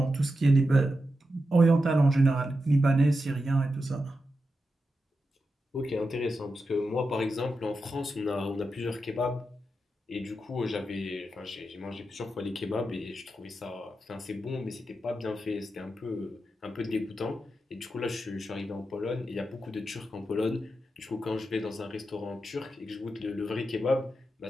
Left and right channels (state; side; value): normal; both; correlation 0.88